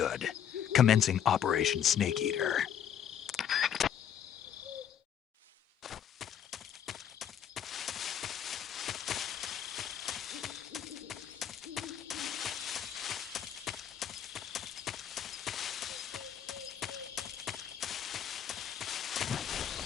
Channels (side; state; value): right; quieter; 9.2 dB